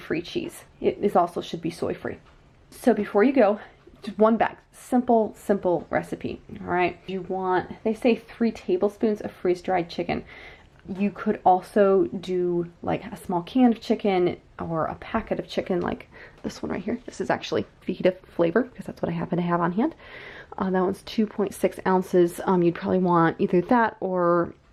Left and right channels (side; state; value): both; identical; correlation 1.00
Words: cheese. It is also should be soy-free. So before you go, just one bag. Simple recipe. All right. You want, they say 3 tablespoons of freeze-dried chicken. You could also do like a small can of chicken or a packet of chicken like this one right here. This is actually fajita flavor because that's what I happen to have on hand. That one's 2.6 ounces. You'd probably want either that or,